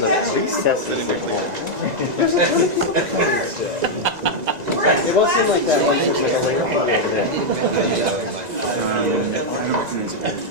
the recesses. It wasn't like that.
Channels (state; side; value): late; left; 2.0 ms